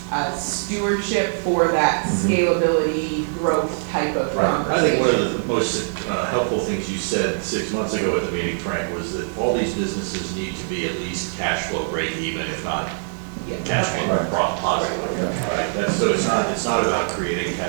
stewardship for that scalability, growth type of Right. I conversation. think one of the most helpful things you said 6 months ago at the meeting, Frank, was that all these businesses need to be at least cash flow break even, if not Yeah. cash flow Right. positive. Right? That's, so it's not about creating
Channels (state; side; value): silent; left; digital silence